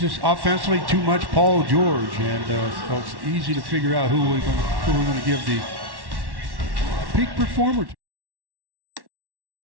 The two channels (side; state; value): left; late; 1.1 ms